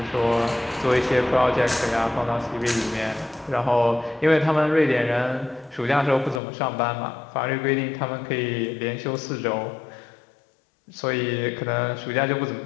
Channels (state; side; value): drops out; right; at 6.4 s